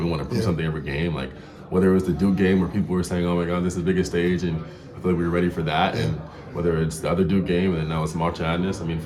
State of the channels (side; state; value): both; identical; correlation 1.00